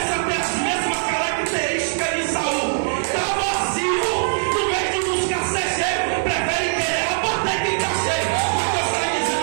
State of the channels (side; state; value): left; silent; 65 dB below the other